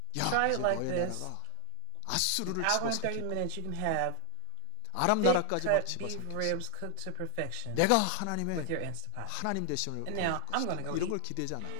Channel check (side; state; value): both; different; correlation 0.00